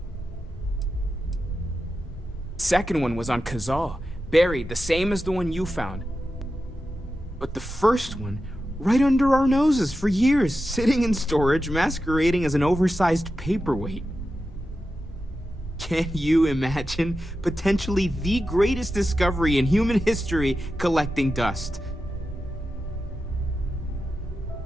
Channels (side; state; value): both; normal; correlation 0.91